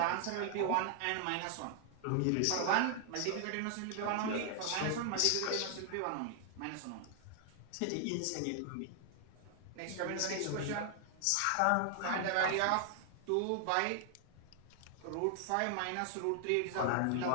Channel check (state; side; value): different; both; correlation 0.00